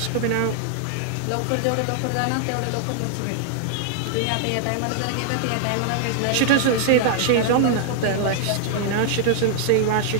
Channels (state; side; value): different; both; correlation 0.00